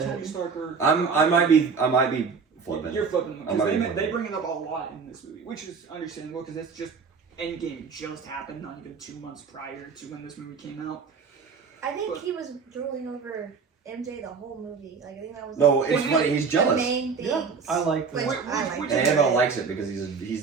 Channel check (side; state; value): left; quieter; 5.4 dB